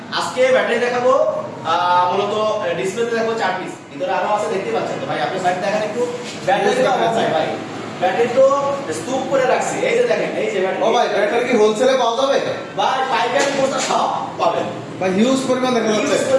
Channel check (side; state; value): both; identical; correlation 1.00